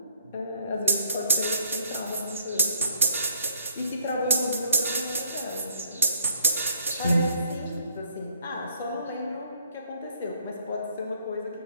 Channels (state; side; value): inverted; both; correlation -0.63